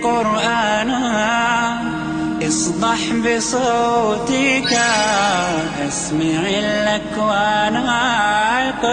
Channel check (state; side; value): identical; both; correlation 1.00